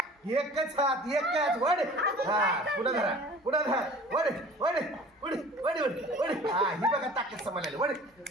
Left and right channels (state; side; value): normal; both; correlation 0.45